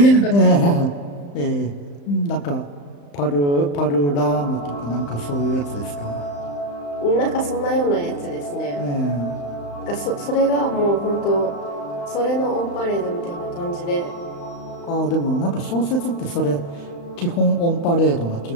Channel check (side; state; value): right; late; 35 ms